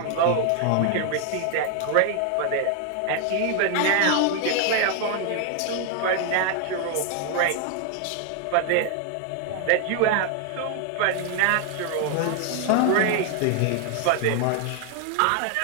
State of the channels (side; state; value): both; different; correlation 0.00